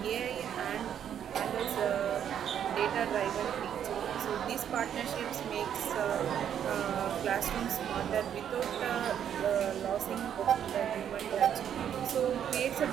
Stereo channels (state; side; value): quieter; left; 9.3 dB